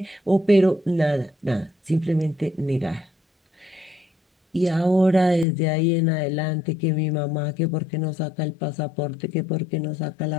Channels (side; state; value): right; drops out; at 5.5 s